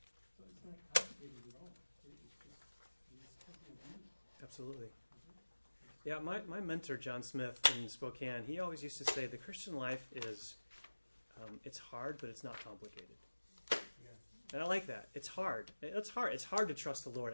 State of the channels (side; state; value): both; inverted; correlation -1.00